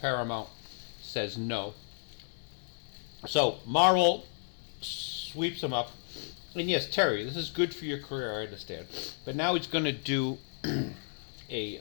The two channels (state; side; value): silent; right; digital silence